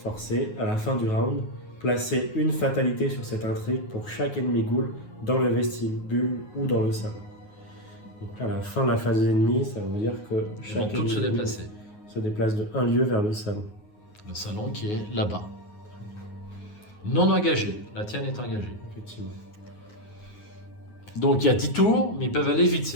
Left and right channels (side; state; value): right; late; 9.5 ms